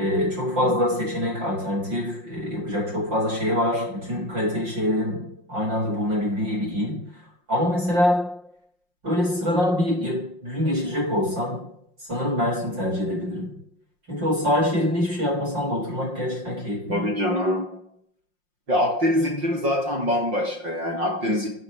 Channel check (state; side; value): late; left; 5.6 ms